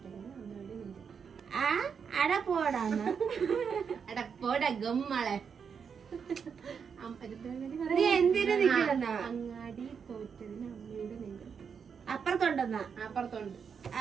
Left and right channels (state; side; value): quieter; left; 6.6 dB